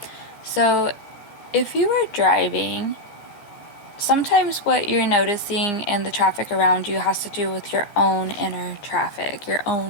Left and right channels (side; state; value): right; late; 15 ms